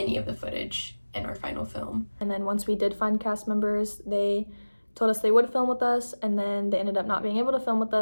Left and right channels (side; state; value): both; inverted; correlation -1.00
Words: of the footage in our final film. And then once we did find cast members, they told us they would film with us, and then they ended up not being able to film with